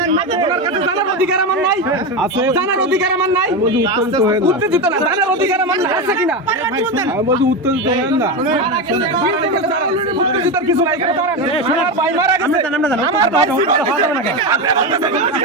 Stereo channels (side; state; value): both; normal; correlation 0.16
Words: ওনার কাছে জানার অধিকার আমার নাই। জানার অধিকার আমার নাই। উত্তেজিত না, জানার অধিকার আমার নাই। আছে কিনা? উত্তেজিত উত্তেজিত কিছু নাই। এখানে দাঁড়ান। আমার ভাই মারা গেছে। আমার ভাই